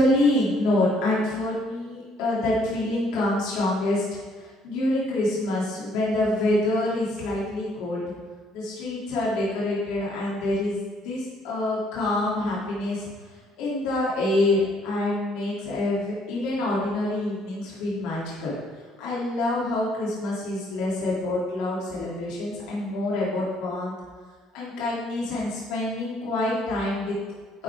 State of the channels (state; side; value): normal; both; correlation 0.66